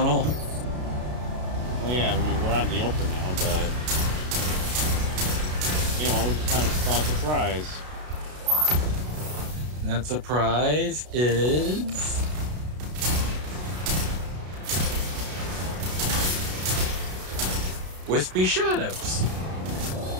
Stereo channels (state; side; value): late; left; 33 ms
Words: Well, yeah, I mean, we're out in the open now, but... You know, we just kind of saw a surprise. And that surprise is... Wispy shadows.